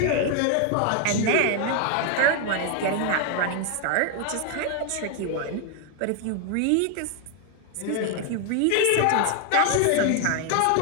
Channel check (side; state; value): both; different; correlation 0.01